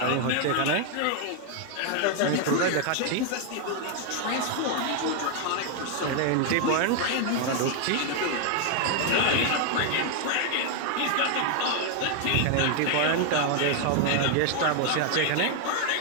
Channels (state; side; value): different; both; correlation 0.00